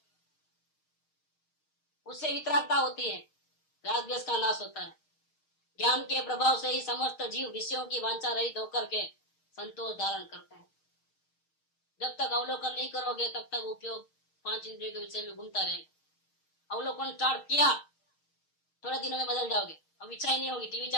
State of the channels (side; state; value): right; late; 6.4 ms